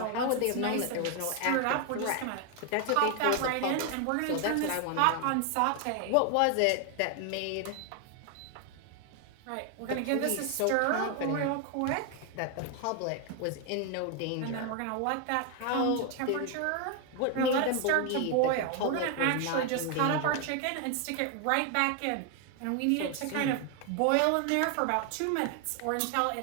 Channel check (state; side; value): different; both; correlation 0.01